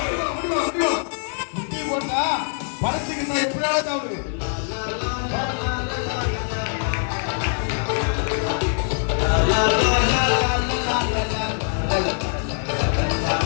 முட்டி போட்டா பறிச்சுக்கிட்டா எப்படியாவது அவரு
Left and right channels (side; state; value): right; silent; 58 dB below the other